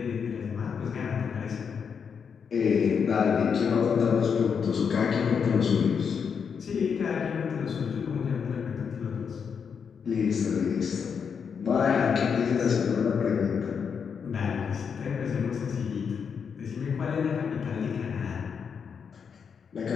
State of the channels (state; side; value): quieter; right; 6.6 dB